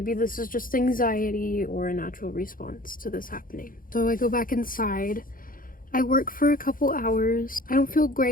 this is just anxiety or a natural response to this happening. So I go back inside. I work for a couple hours. I don't feel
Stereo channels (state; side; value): late; right; 0.40 ms